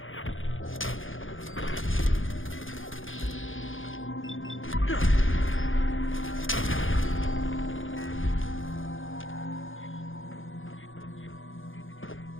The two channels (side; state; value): right; late; 0.58 ms